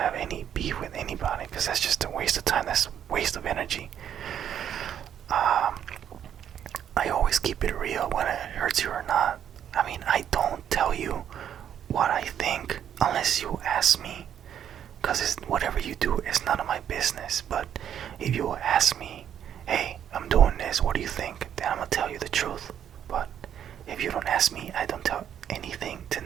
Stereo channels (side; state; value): left; quieter; 9.5 dB